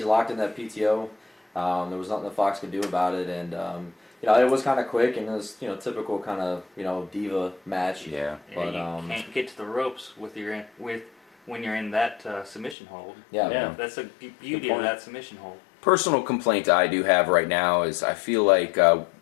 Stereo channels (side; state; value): right; drops out; at 12.8 s